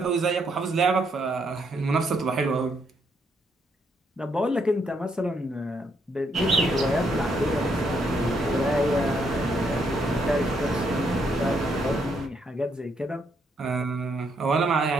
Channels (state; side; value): normal; both; correlation 0.74